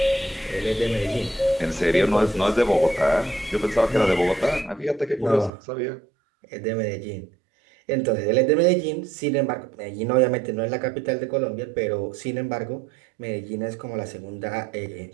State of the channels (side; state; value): left; drops out; at 5.5 s